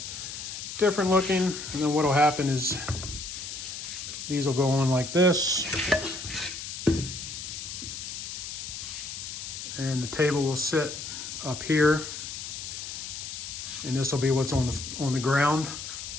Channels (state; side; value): noise; left; hiss, 8 dB below the sound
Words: different looking. And then what will happen is these will go on like this. And the table will sit up here. And this will be what's on the ground.